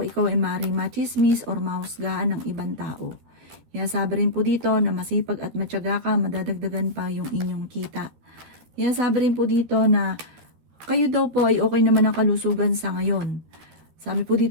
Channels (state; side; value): late; left; 13 ms